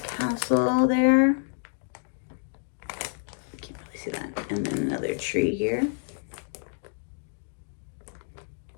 castle there. Can't really see that. And then another tree here.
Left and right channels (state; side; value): silent; right; digital silence